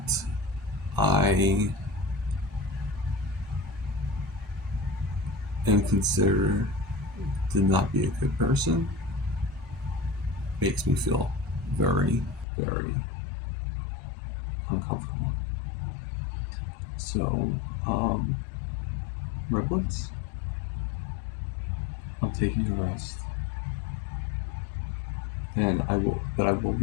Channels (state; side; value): drops out; right; at 12.5 s